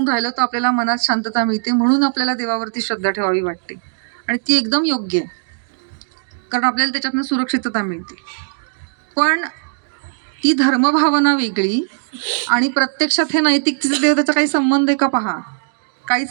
राहिलो तर आपल्याला मनात शांतता मिळते, म्हणून आपल्याला देवावरती श्रद्धा ठेवावी वाटते. आणि ती एकदम योग्य आहे, कारण आपल्याला त्याच्यातनं सुरक्षितता मिळते. पण ती धर्मभावना वेगळी आणि प्रत्यक्षात हे नैतिकतेच्या देवतेचा काही संबंध आहे का, पहा, काहीच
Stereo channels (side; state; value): left; silent; digital silence